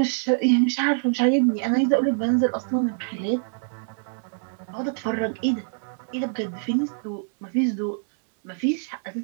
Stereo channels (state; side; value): silent; left; digital silence